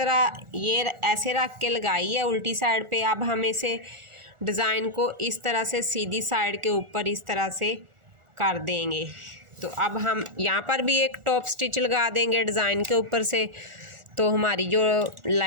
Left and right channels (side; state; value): left; late; 1.4 ms